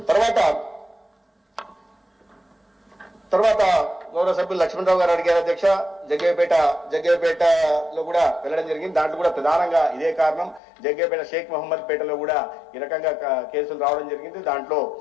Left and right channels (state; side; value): drops out; right; at 10.6 s